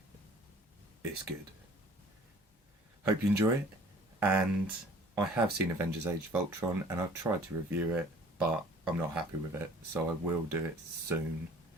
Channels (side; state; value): both; normal; correlation 0.52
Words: it's good. Hope you enjoy it, and I have seen Avengers Age of Ultron and I've tried to review it, but I'm not happy with it, so I will do it soon,